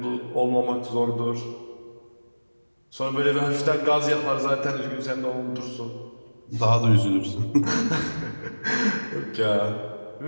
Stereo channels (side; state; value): both; inverted; correlation -1.00